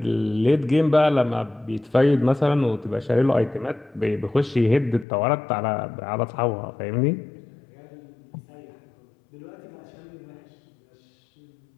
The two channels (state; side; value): drops out; right; at 5.1 s